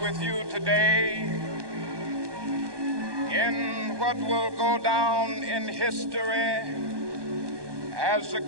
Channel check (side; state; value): left; late; 1.2 ms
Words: with you today in what will go down in history as the